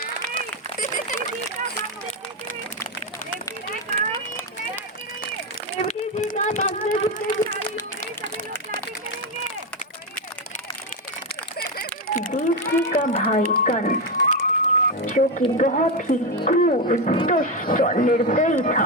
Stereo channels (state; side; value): normal; both; correlation 0.10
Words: देवकी का भाई कंस, जो कि बहुत ही क्रूर, दुष्ट और निर्दयी